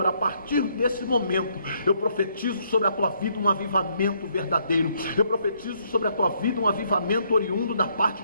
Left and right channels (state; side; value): inverted; both; correlation -0.71